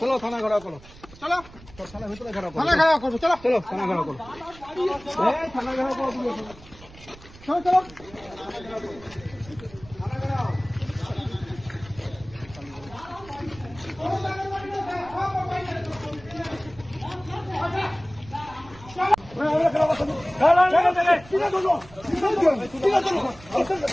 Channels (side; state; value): right; noise; rumble, 20 dB below the sound